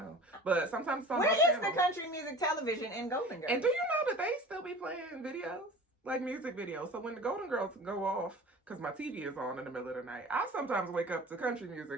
But sometimes it's on both Where is channels. the country music television in Golden Girls? And do you know that they still be playing videos? Like music videos. So when the Golden Girls go off, because my TV is on in the middle of the night, I sometimes wake up to country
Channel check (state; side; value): normal; both; correlation 0.40